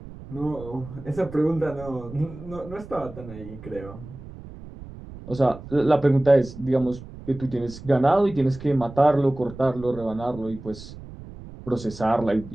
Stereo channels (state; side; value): noise; right; rumble, 15 dB below the sound